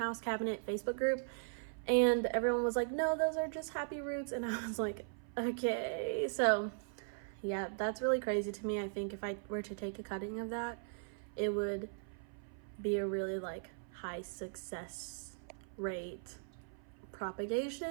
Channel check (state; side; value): silent; left; 52 dB below the other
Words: cabinet Facebook group. And everyone was like, no, those are just happy roots. And I was like, okay. So yeah, that's really crazy to me. I think if I were to take a cutting of that, it would be a really like high success rate